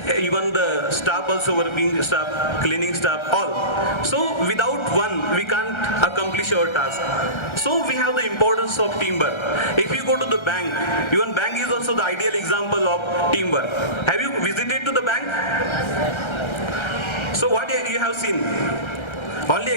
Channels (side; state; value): right; late; 1.3 ms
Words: even the staff also, working staff, cleaning staff, all. So without one we can't accomplish our task. So we have the importance of teamwork. If you go to the bank, even bank is also the ideal example of teamwork. Have you visited to the bank? So what you have seen? Only